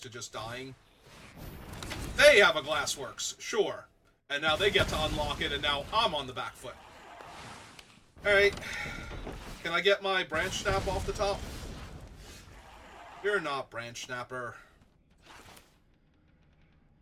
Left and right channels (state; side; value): identical; both; correlation 1.00